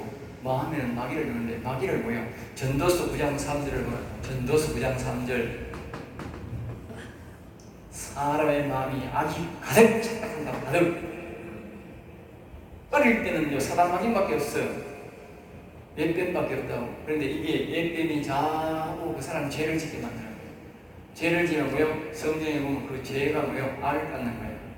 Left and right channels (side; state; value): both; identical; correlation 1.00